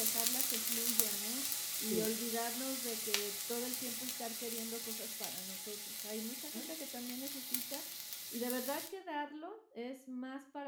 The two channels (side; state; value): both; identical; correlation 1.00